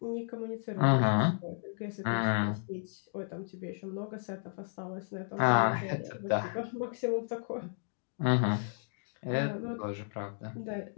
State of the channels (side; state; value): right; silent; digital silence